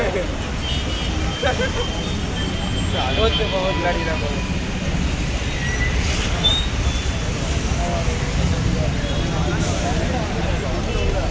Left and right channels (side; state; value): both; identical; correlation 1.00